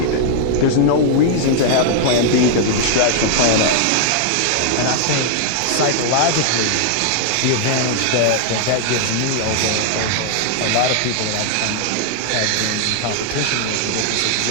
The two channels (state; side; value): different; both; correlation 0.00